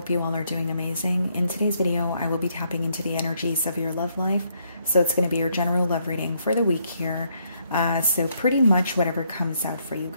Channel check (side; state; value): both; inverted; correlation -0.73